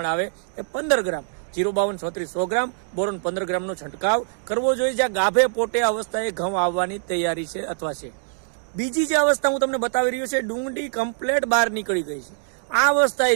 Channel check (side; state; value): left; silent; digital silence